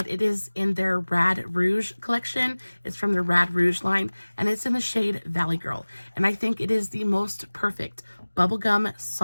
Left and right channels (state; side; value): inverted; both; correlation -1.00